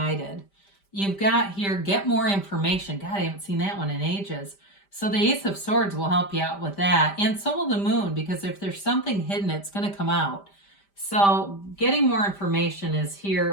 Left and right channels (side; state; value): right; late; 5.1 ms